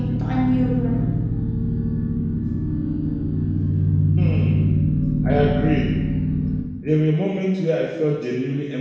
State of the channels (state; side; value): identical; both; correlation 1.00